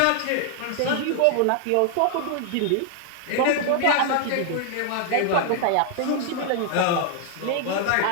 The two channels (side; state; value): both; different; correlation 0.00